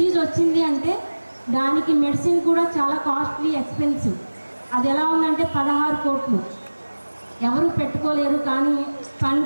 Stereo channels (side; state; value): both; inverted; correlation -1.00